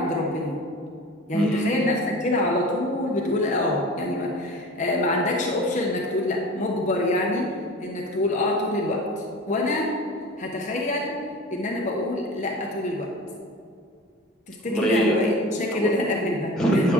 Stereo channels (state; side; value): normal; both; correlation 0.36